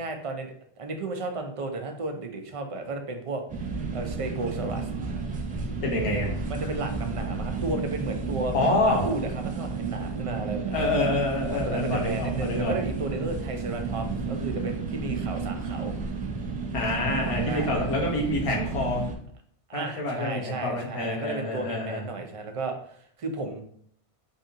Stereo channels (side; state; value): right; late; 1.5 ms